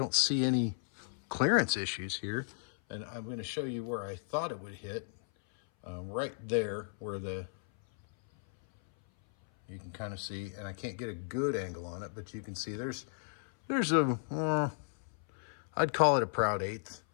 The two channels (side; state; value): right; silent; 55 dB below the other